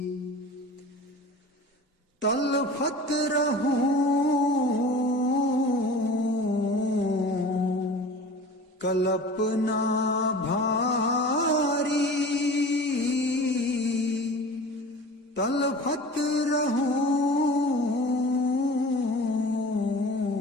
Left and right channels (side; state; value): both; normal; correlation 0.39